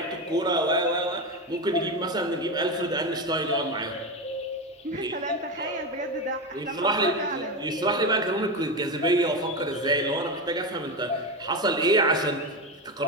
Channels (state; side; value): normal; both; correlation 0.16